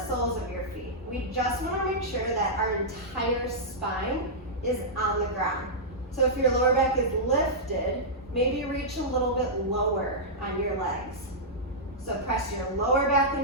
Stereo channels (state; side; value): normal; both; correlation -0.12